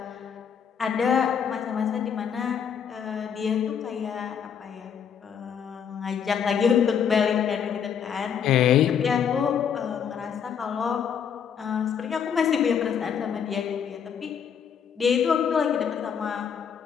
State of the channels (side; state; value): right; quieter; 7.7 dB